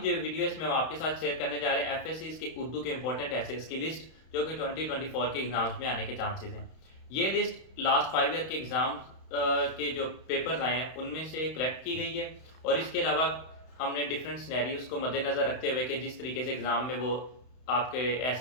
वीडियो है इसमें हम आपके साथ शेयर करने जा रहे हैं एफएससीज के उर्दू के इंपॉर्टेंट एसेस की लिस्ट जो कि 2024 के एग्जाम्स में आने के चांसेस हैं। ये लिस्ट लास्ट 5 ईयर के एग्जाम्स के जो पेपर्स आए हैं उनमें से कलेक्ट की गई है और इसके अलावा हमने डिफरेंट सिनेरियोज को मद्देनज़र रखते हुए कि जिस तरीके से एग्ज़ाम में वो आपके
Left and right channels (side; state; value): right; late; 31 ms